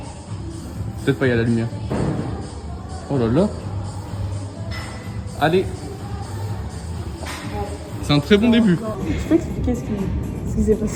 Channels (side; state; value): both; identical; correlation 1.00